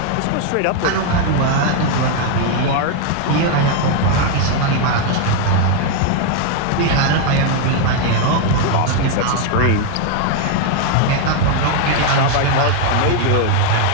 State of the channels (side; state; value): both; different; correlation 0.01